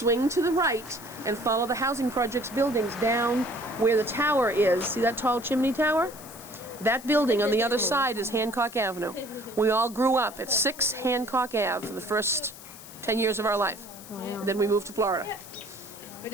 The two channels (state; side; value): noise; left; hiss, 17 dB below the sound